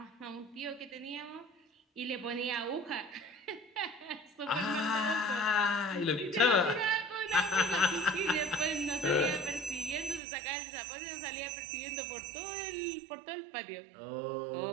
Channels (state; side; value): drops out; left; at 10.2 s